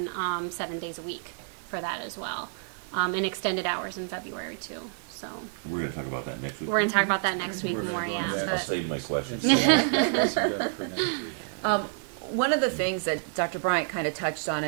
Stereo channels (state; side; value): silent; left; digital silence